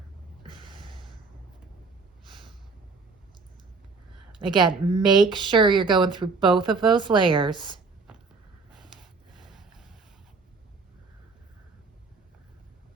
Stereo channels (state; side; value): quieter; left; 4.4 dB